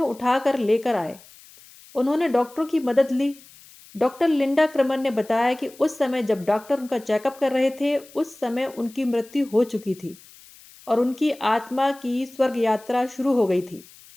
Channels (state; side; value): noise; left; hiss, 23 dB below the sound